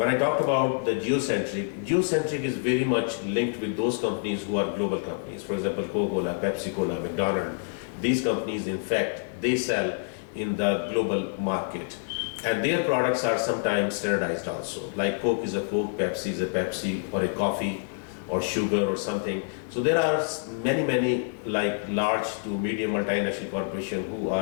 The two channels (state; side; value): silent; right; 60 dB below the other